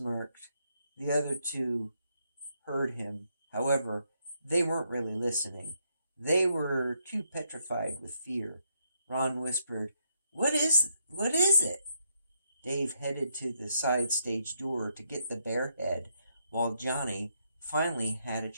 The other 2 heard him. However, they weren't really listening. They were too petrified with fear. Ron whispered, What is it?" Dave headed to the side stage door to get the bear head, while Johnny finally had a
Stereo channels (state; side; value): inverted; both; correlation -0.77